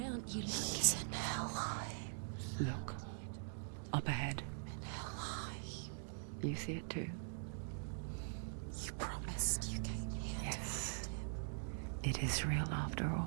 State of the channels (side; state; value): left; silent; digital silence